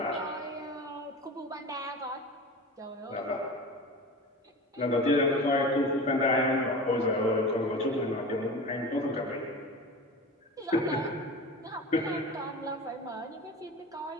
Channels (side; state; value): both; normal; correlation 0.32